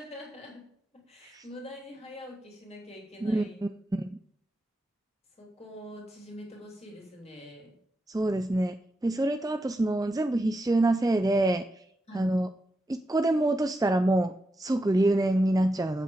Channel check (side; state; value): both; normal; correlation 0.87